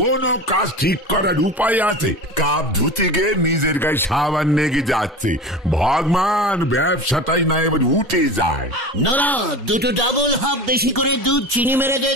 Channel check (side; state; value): both; normal; correlation 0.31